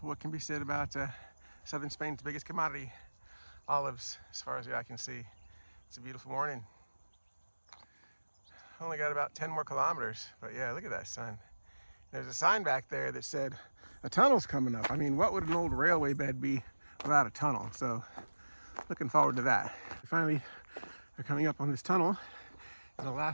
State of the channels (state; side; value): inverted; both; correlation -1.00